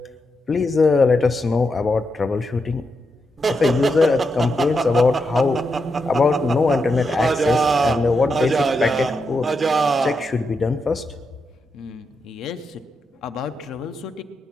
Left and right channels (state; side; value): normal; both; correlation 0.84